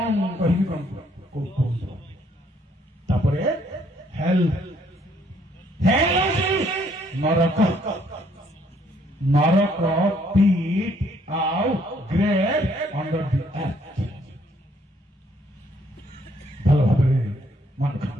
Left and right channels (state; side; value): normal; both; correlation 0.66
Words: ମୁଁ କହିବି, କଣ କୁହନ୍ତୁ। ତାପରେ ହେଲ୍, ହେଲ୍ ହେଉଛି ନରକ। ନରକ ପିଟ୍ ଆଉ ଗ୍ରେଭ୍ ଅଣ୍ଡର ଦି ଆର୍ଥ। ଭଲ ଭାବରେ ମନେ